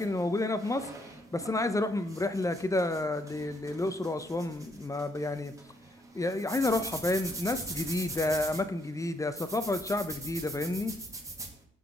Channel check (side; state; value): both; normal; correlation 0.73